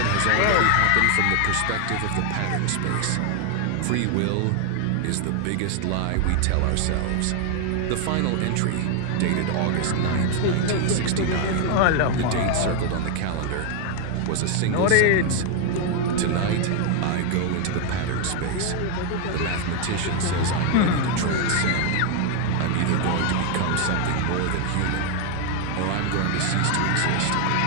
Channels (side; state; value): both; different; correlation 0.01